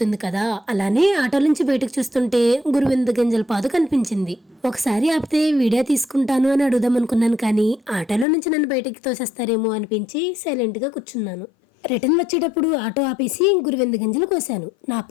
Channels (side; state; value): right; drops out; at 8.2 s